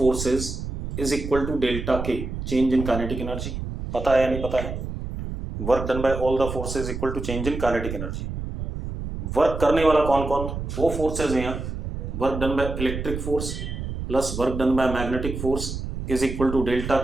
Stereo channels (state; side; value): noise; right; rumble, 6 dB below the sound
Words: is equal to delta K, change in kinetic energy. पता है या नहीं पता है? Work done by all the forces equal to change in kinetic energy. Work करने वाला कौन कौन? दो फोर्सेज हैं यहाँ। Work done by electric force plus work done by magnetic force is equal to delta